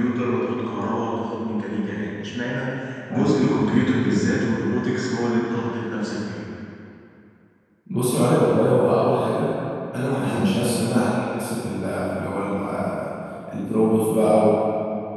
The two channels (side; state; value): both; identical; correlation 1.00